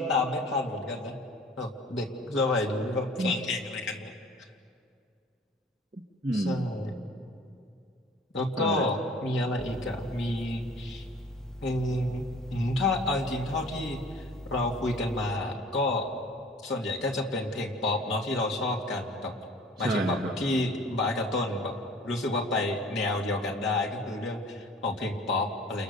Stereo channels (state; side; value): normal; both; correlation 0.48